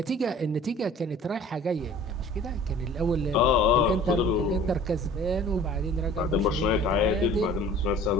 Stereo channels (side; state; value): both; normal; correlation 0.47